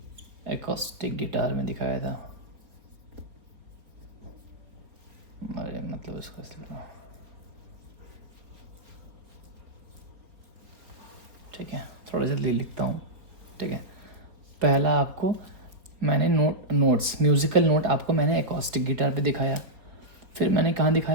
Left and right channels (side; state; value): left; late; 4.1 ms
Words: एकॉस्टिक गिटार में दिखाया था। अरे मतलब इसका ठीक है, थोड़ा जल्दी लिखता हूँ। ठीक है, पहला आपको मैंने नोट्स म्यूज़िकल नोट आपको मैंने एकॉस्टिक गिटार पे दिखाया। फिर मैंने कहाँ